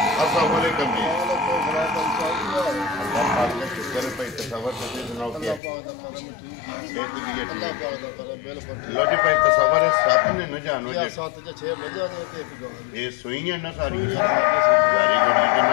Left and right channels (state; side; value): drops out; right; at 5.6 s